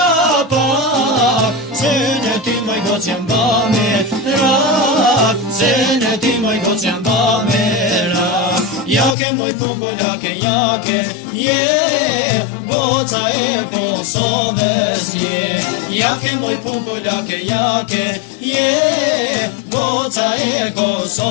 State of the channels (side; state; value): right; drops out; at 9.2 s